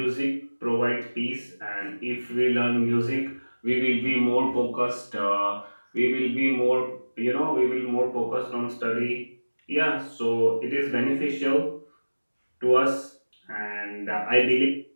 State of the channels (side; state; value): both; inverted; correlation -1.00